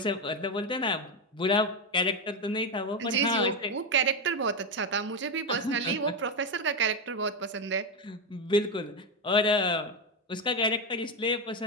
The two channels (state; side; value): normal; both; correlation 0.09